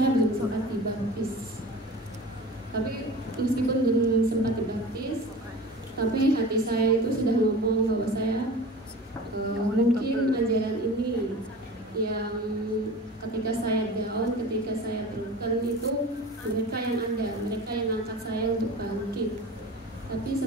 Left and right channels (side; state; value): both; normal; correlation 0.37